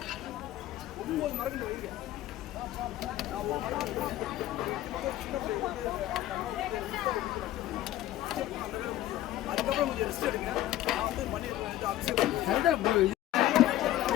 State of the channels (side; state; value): right; quieter; 14.0 dB